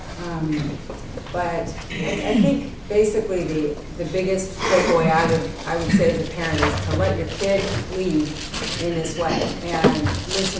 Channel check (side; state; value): both; identical; correlation 1.00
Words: But I think basically the biggest takeaway I would say as a parent is to let your kid lead in this way and